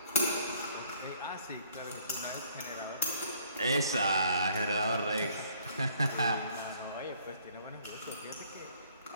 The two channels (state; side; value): inverted; both; correlation -0.61